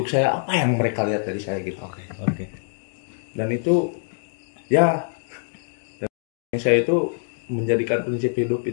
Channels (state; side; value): silent; right; digital silence